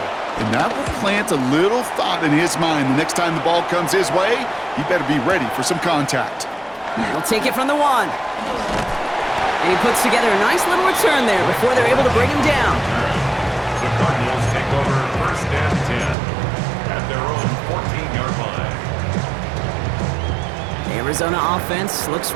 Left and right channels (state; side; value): drops out; left; at 16.2 s